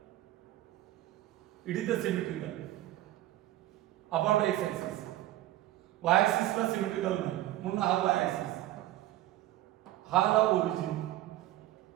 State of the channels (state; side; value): quieter; left; 14.9 dB